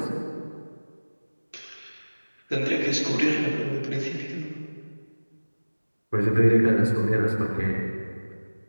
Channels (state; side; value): inverted; both; correlation -1.00